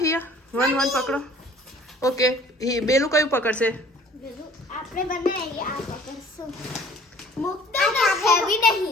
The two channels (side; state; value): both; normal; correlation 0.53